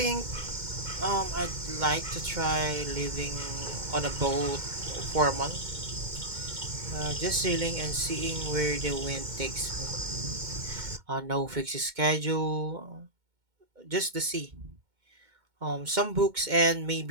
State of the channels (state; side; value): late; left; 2.1 ms